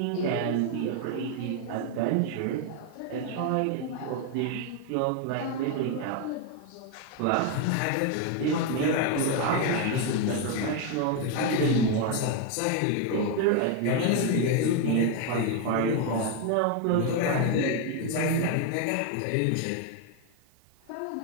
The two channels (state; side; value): different; both; correlation 0.01